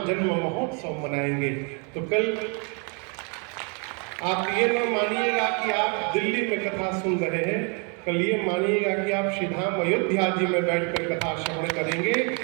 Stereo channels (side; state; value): left; quieter; 36.2 dB